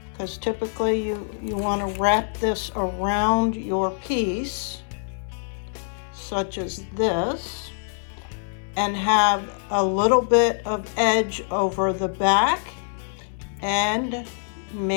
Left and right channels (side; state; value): right; silent; digital silence